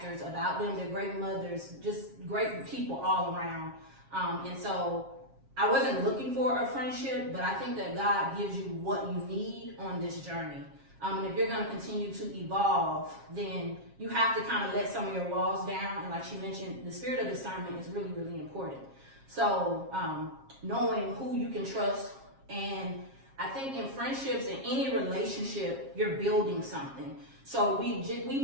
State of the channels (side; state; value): left; late; 7.4 ms